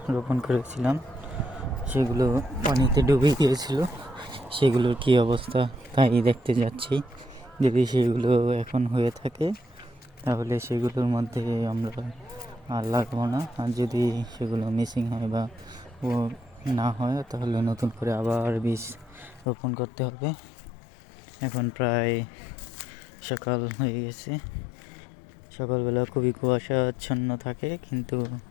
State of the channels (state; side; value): drops out; right; at 19.5 s